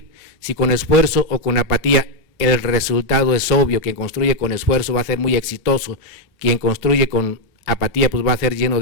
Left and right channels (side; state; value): right; late; 2.9 ms